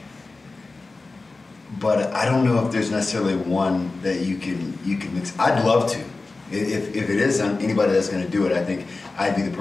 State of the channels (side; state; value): right; quieter; 3.6 dB